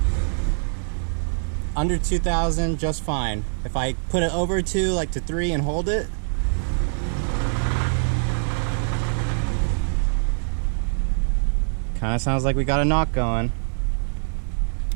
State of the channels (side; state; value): left; silent; 63 dB below the other